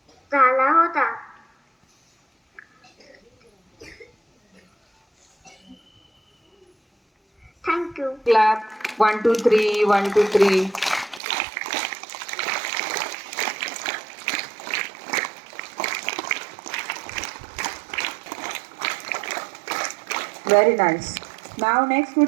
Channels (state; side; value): drops out; left; at 11.2 s